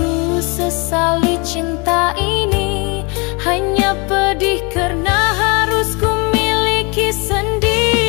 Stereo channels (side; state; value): right; quieter; 30.3 dB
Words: sesali cinta ini, hanya pedih karena harus ku miliki